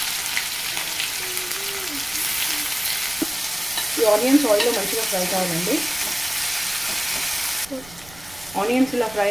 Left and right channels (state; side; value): noise; right; rumble, 20 dB below the sound